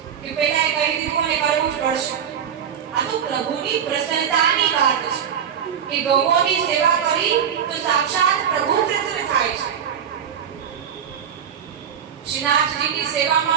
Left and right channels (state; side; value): quieter; left; 8.3 dB